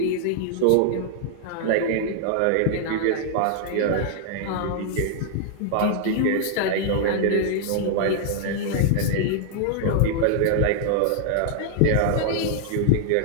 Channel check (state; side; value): different; both; correlation -0.01